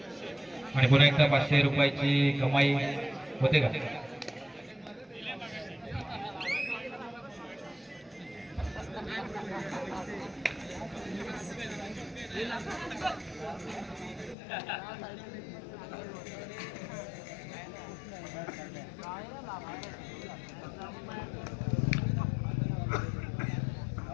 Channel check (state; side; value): drops out; right; at 14.4 s